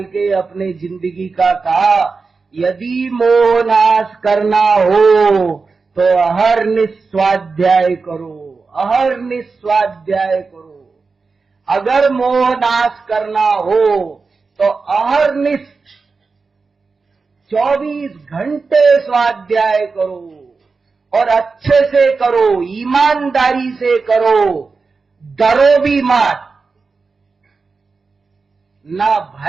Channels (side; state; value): left; quieter; 4.4 dB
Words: के अपने जिंदगी का कहा, यदि मोह नाश करना हो तो अहर्निश स्वाध्याय करो, अहर्निश स्वाध्याय करो। अगर मोह नाश करना हो तो अहर्निश 24 घंटे स्वाध्याय करो और अच्छे से करो, ईमानदारी से करो, डरो भी मत। न